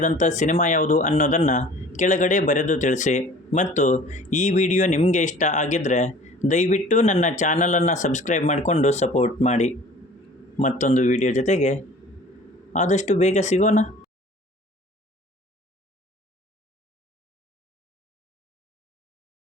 ಸಿನಿಮಾ ಯಾವುದು ಅನ್ನೋದನ್ನು ಕೆಳಗಡೆ ಬರೆದು ತಿಳಿಸಿ. ಮತ್ತು ಈ ವಿಡಿಯೋ ನಿಮಗೆ ಇಷ್ಟ ಆಗಿದ್ದರೆ ದಯವಿಟ್ಟು ನನ್ನ ಚಾನಲನ್ನು ಸಬ್ಸ್ಕ್ರೈಬ್ ಮಾಡಿಕೊಂಡು ಸಪೋರ್ಟ್ ಮಾಡಿ. ಮತ್ತೊಂದು ವಿಡಿಯೋ ಜೊತೆಗೆ ಆದಷ್ಟು ಬೇಗ ಸಿಗೋಣ.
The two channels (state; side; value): normal; both; correlation 0.47